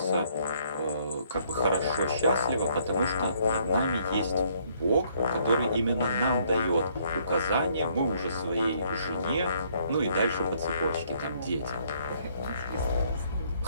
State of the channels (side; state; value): both; inverted; correlation -0.67